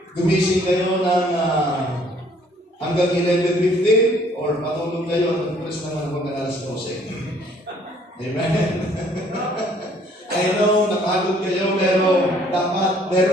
Gumising kayo ng hanggang 11:15 or matulog kayo, nag-press naman hanggang alas 12. Amen? I know, nakagod kayo, pero dapat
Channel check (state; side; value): normal; both; correlation 0.60